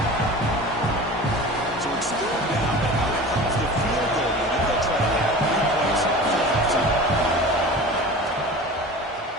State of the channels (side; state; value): both; normal; correlation 0.36